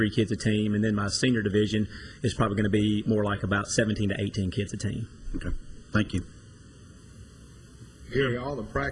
kids a team, and then my senior division is probably going to be more like about 17 to 18 kids a team. Okay. Thank you. Gary, all the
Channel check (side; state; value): both; identical; correlation 1.00